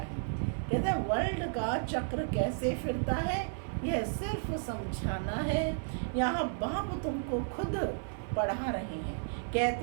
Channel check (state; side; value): silent; left; 56 dB below the other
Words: है, कहते हैं वर्ल्ड का चक्र कैसे फिरता है यह सिर्फ समझाना है। यहाँ बाप तुमको खुद पढ़ा रहे हैं,